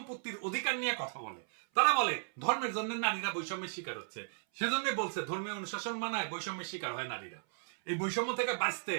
অধিকার নিয়ে কথা বলে। তারা বলে ধর্মের জন্য নারীরা বৈষম্যের শিকার হচ্ছে, সেজন্য বলছে ধর্মীয় অনুশাসন মানায় বৈষম্যের শিকার হয় নারীরা। এই বৈষম্য থেকে বাঁচতে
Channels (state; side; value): silent; left; 54 dB below the other